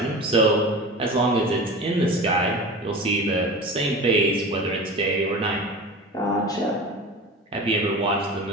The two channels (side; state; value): both; normal; correlation 0.33